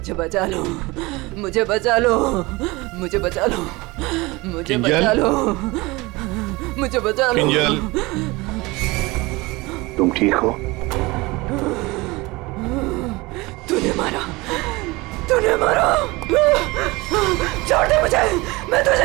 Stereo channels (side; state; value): left; quieter; 22.8 dB